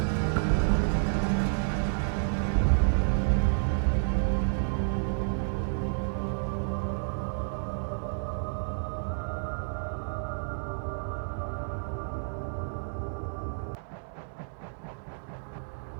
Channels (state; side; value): silent; left; digital silence